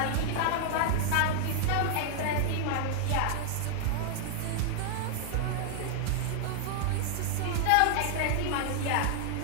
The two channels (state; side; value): different; both; correlation -0.01